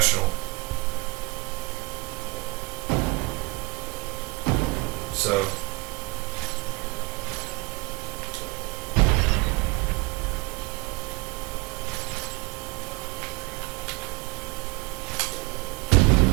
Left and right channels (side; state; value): left; quieter; 25.3 dB